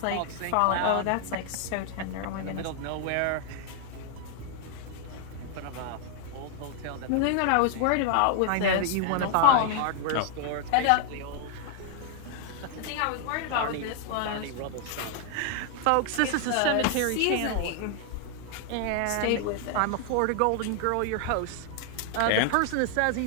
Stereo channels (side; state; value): both; different; correlation 0.00